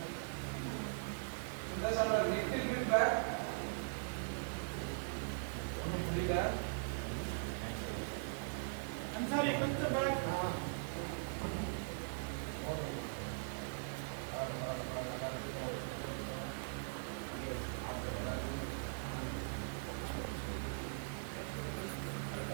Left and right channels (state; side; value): silent; left; 50 dB below the other